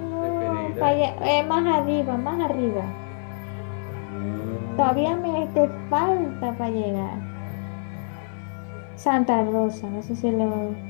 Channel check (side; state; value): right; silent; 62 dB below the other